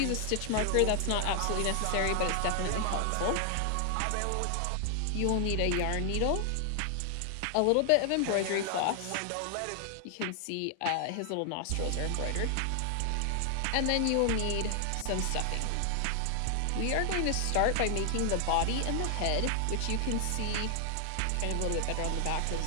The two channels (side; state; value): both; different; correlation 0.00